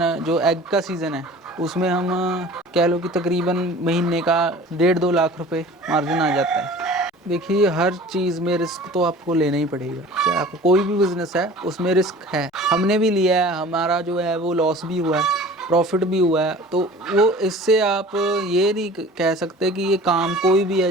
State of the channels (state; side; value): normal; both; correlation 0.43